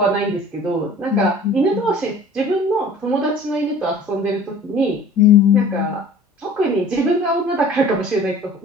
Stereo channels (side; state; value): both; normal; correlation 0.46